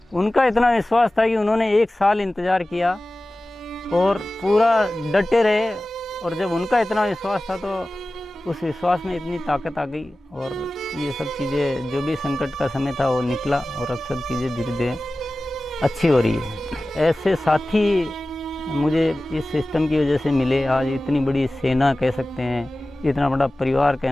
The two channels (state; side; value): normal; both; correlation 0.96